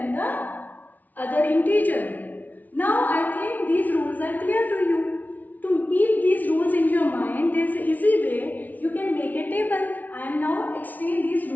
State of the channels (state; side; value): late; right; 0.078 ms